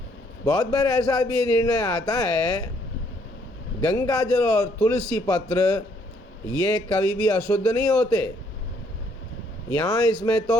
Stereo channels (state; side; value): normal; both; correlation 0.68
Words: बहुत बार ऐसा भी निर्णय आता है, गंगा जल और तुलसी पत्र ये कभी भी अशुद्ध नहीं होते। यहाँ इसमें